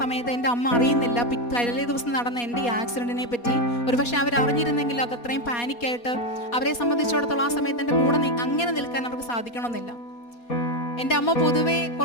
എൻ്റെ അമ്മ അറിയുന്നില്ല തലേ ദിവസം നടന്ന എൻ്റെ ഈ ആക്സിഡൻറ്റിനെ പറ്റി. ഒരുപക്ഷെ അവർ അറിഞ്ഞിരുന്നെങ്കിൽ അത് അത്രയും പാനിക്കായിട്ട് അവരെ സംബന്ധിച്ചിടത്തോളം ആ സമയത്ത് എൻ്റെ കൂടെ അങ്ങനെ നിൽക്കാൻ അവർക്ക് സാധിക്കണമെന്നില്ല. എൻ്റെ അമ്മ പൊതുവേ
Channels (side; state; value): right; late; 4.2 ms